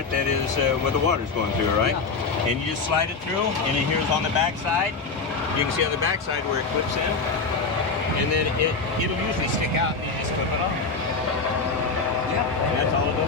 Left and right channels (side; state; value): right; quieter; 4.3 dB